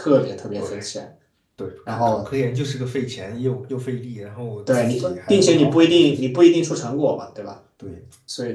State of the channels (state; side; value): identical; both; correlation 1.00